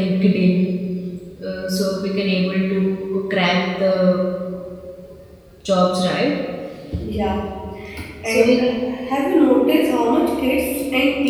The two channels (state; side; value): identical; both; correlation 1.00